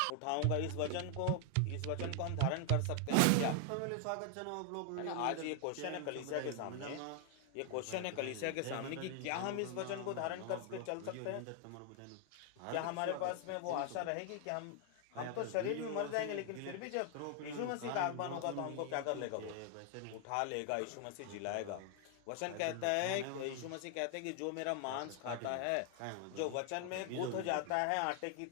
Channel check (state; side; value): different; both; correlation 0.00